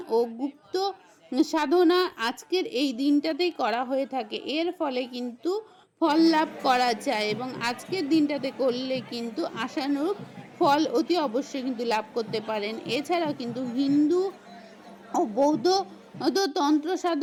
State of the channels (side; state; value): both; identical; correlation 1.00